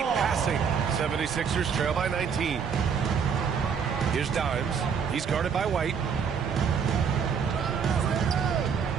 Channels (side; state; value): left; quieter; 6.6 dB